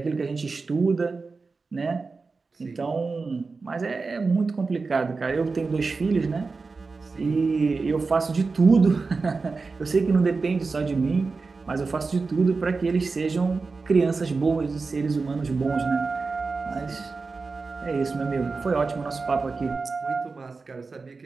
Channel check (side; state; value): left; quieter; 4.2 dB